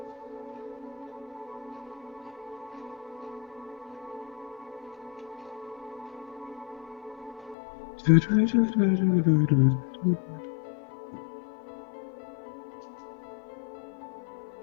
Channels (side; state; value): right; drops out; at 7.6 s